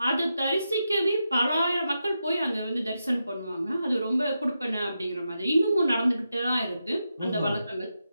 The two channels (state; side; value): inverted; both; correlation -0.87